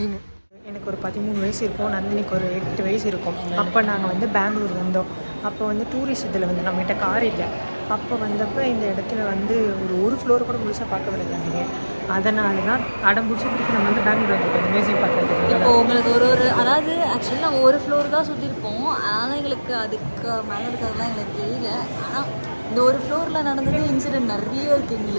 எனக்கு ஒரு 13 வயசு இருக்கும், நந்தினிக்கு ஒரு 8 வயசு இருக்கும். அப்போ நாங்கள் வந்து பெங்களூர் வந்தோம். அப்போ வந்து டூரிஸ்ட் இதில் வந்து நம்மகிட்ட கார் இல்லை. அப்போ வந்தப்போ இந்த இடத்துல வந்து ஒரு ஃப்ளோர் கூட முழுசாக பார்க்க விடுறாங்க. அதனால தான் அடம் பிடிச்சிட்டு நம்ம வந்து பெங்களூர் வந்துருக்கோம் மியூசியம் பார்க்குறதுக்கு. இப்போ உங்களுக்கு ஒரு அதாவது ஆக்சுவலி நாங்கள் ஒரு ஃப்ளோர் தான் சுற்றிருப்போம். ஆனால் எங்களுக்கு அதுக்கு மேலே இருக்கிறதுலாம் எங்களுக்கு தெரியல. ஆனால் இந்த ஒரு ஃப்ளோரில் நடந்தது இன்சிடென்ட் நிறைய இருக்குது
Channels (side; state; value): both; inverted; correlation -1.00